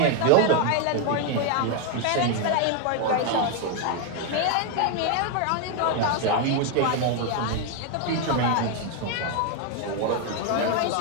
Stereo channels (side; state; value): both; different; correlation 0.01